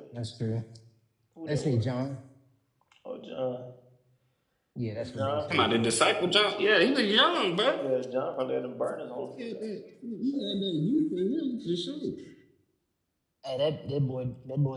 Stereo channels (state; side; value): identical; both; correlation 1.00